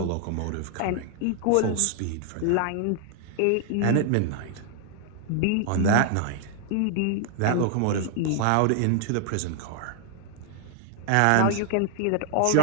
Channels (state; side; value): different; both; correlation -0.01